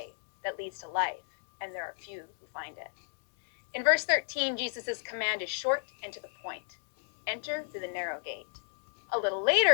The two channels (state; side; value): silent; right; digital silence